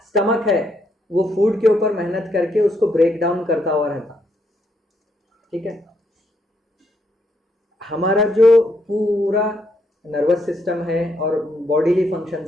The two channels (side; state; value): both; normal; correlation 0.75